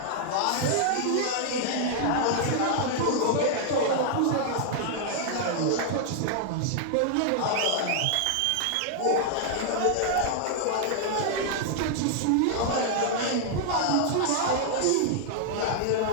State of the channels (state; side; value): different; both; correlation -0.01